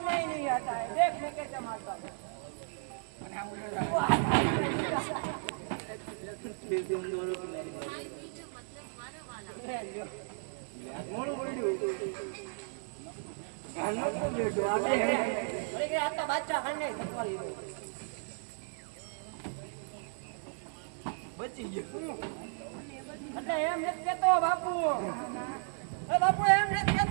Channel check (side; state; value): left; silent; digital silence